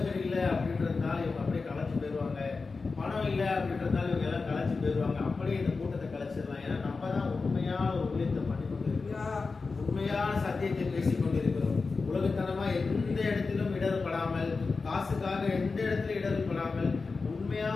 இல்லை அப்படின்றதுனால இவங்க அப்படியே கலைச்சு போயிடுவாங்க, பணம் இல்லை அப்படின்றதுனால இவங்க எல்லாம் கலைச்சு போயிடுவாங்க, அப்படியே இந்த கூட்டத்தை கலைச்சிடலாம். ஏன்னா நம்ம தான் உண்மையான ஒரு ஊழியத்தை பண்ணி கொண்டு இருக்கிறோம், உண்மையான சத்தியத்தை பேசிக் கொண்டிருக்கிறோம். உலகத்தனமா எந்த இடத்திலும் இடர்படாமல், காசுக்காக எந்த இடத்துல இடர்படாமல் உண்மையா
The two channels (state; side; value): quieter; right; 4.3 dB